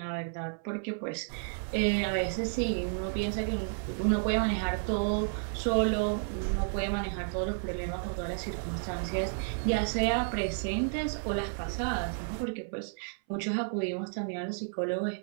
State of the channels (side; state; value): left; silent; 57 dB below the other